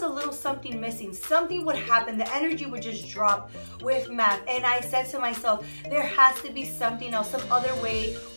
a little something missing. Something would happen. The energy would just drop with math. And I said to myself, there has to be something else, some other way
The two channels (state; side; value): inverted; both; correlation -1.00